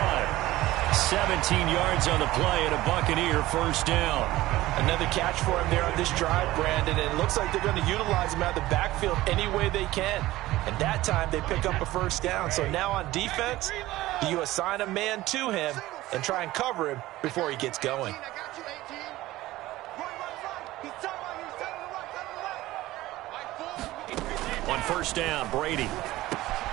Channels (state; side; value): quieter; left; 17.0 dB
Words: 17 yards on the play and a Buccaneer first down. Another catch for him there on this drive, Brandon, and it looks like they're going to utilize him out of the backfield any way they can. And that time they pick up a first down. So now on defense, you assign a man to him and try and cover him before he gets going. On first down, Brady.